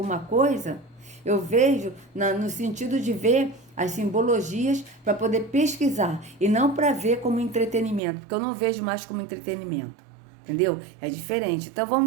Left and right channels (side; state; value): left; drops out; at 8.0 s